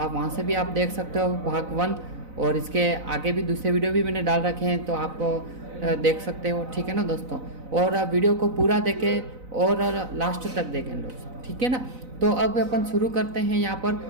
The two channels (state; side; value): late; left; 4.0 ms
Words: आप वहाँ से भी आप देख सकते हो भाग 1। और इसके आगे भी दूसरे वीडियो भी मैंने डाल रखे हैं, तो आप देख सकते हो, ठीक है ना दोस्तों। और वीडियो को पूरा देखें और लास्ट तक देखें दोस्तों, ठीक है ना। तो अब अपन शुरू करते हैं। यहाँ पर